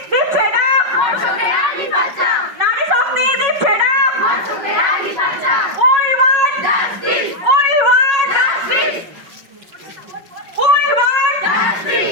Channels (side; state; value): left; late; 5.4 ms